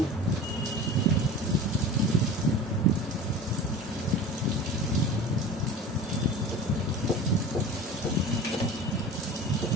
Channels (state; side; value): normal; both; correlation 0.35